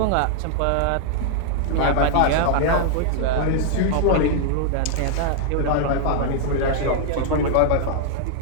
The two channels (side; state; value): both; different; correlation -0.01